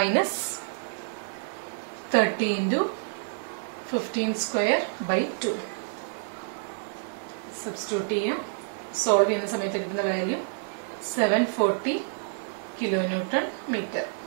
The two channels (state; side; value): silent; left; digital silence